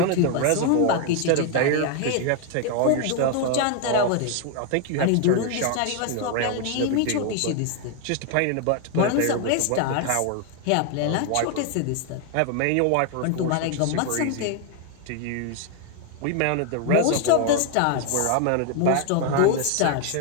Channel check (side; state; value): both; different; correlation 0.01